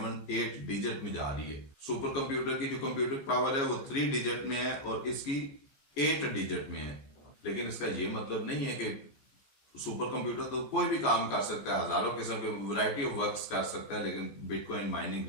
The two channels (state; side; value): late; right; 14 ms